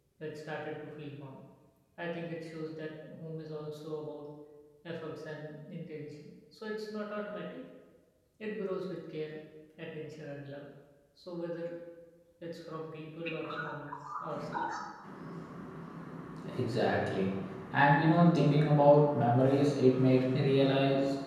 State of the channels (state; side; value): identical; both; correlation 1.00